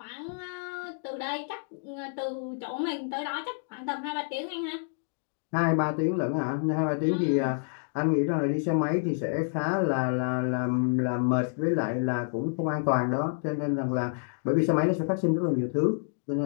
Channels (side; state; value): right; silent; digital silence